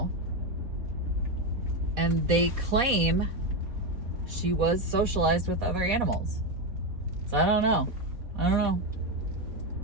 and they claim she was socialized with other animals. So I don't know. I don't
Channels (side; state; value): left; late; 4.1 ms